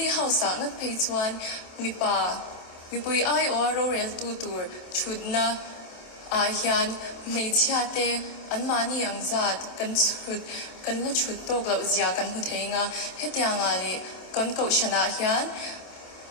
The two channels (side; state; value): right; late; 27 ms